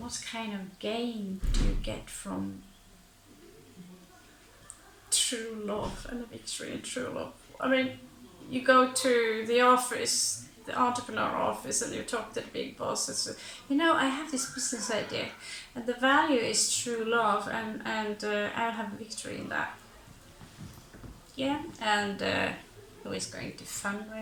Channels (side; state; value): both; identical; correlation 1.00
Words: kind of gain do you get from true love and a victory in true love? I mean, you go to the office, the entrepreneur office, and you talk to the big boss and say, you know, I have this business idea, and the value is true love, and I'll have a victory in that. Yeah, and who is going to